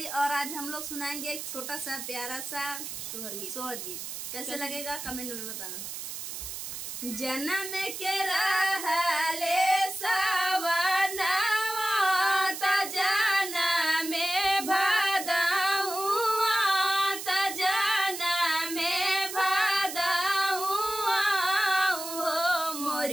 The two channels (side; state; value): right; noise; hiss, 7 dB below the sound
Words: और आज हम लोग सुनाएंगे एक छोटा सा प्यारा सा सोहर गीत। कैसे लगेगा कमेंट में बताना। जन्म के रहले सवनवा त जनम भदहुआ त जनम भदहुआ हो